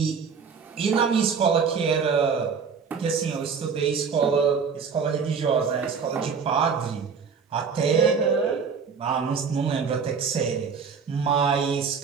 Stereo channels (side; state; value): left; quieter; 5.9 dB